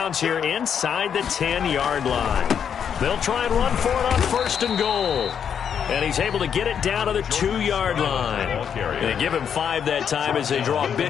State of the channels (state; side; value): quieter; right; 7.9 dB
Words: here inside the 10-yard line. They'll try and run for it on 1st and goal. And he's able to get it down to the 2-yard line. They give him 5 that time as they draw a